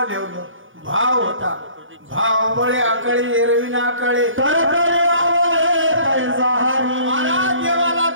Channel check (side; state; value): left; late; 0.58 ms